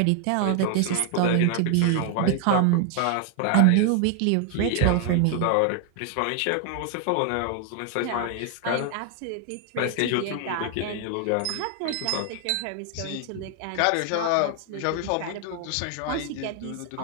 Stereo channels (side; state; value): both; different; correlation 0.00